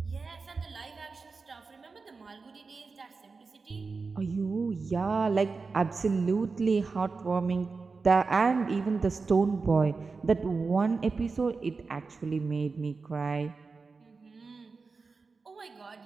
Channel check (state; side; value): quieter; left; 4.4 dB